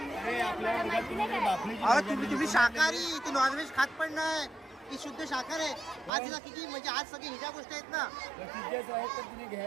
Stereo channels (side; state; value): left; drops out; at 6.1 s